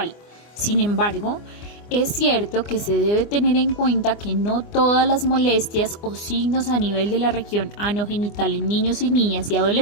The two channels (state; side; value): late; right; 24 ms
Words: Sin embargo, es cierto que se debe tener en cuenta que no todas las molestias o signos a nivel de la región anogenital en niños y niñas y